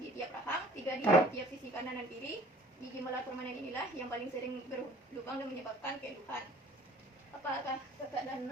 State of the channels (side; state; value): both; normal; correlation 0.51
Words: di tiap rahang, 3 di tiap sisi kanan dan kiri. Gigi molar permanen inilah yang paling sering berlubang dan menyebabkan keluhan. Apakah kakak